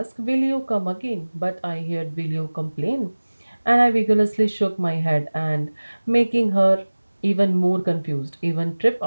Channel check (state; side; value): inverted; both; correlation -1.00